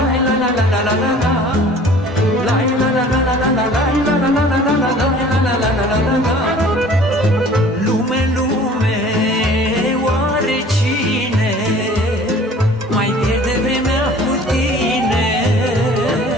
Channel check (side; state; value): both; normal; correlation 0.49